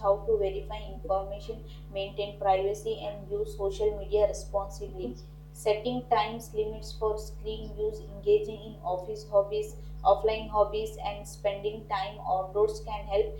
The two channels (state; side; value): identical; both; correlation 1.00